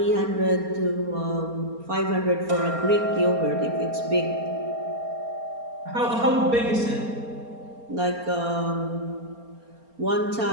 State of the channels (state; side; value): late; left; 4.3 ms